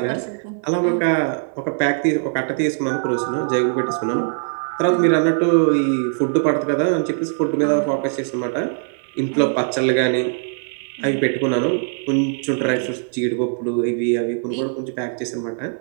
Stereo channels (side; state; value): left; silent; digital silence